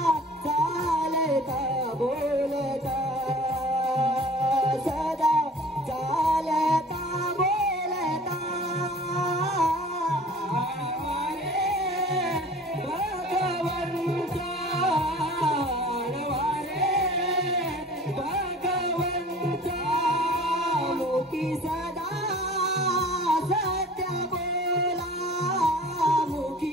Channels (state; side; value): normal; both; correlation 0.45